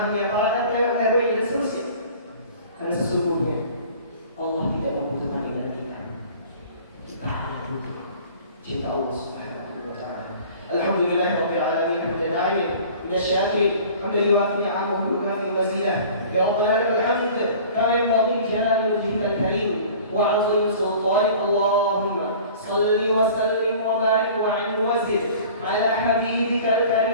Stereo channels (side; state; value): both; inverted; correlation -0.45